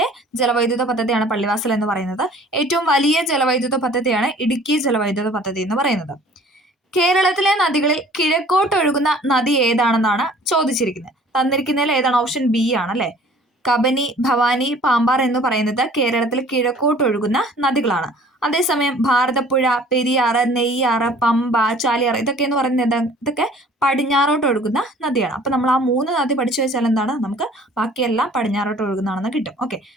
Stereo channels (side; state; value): both; normal; correlation 0.51